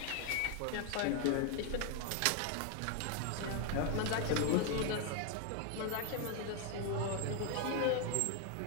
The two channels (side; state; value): both; different; correlation 0.01